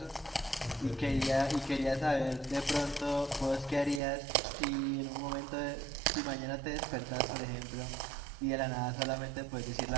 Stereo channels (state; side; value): drops out; left; at 4.0 s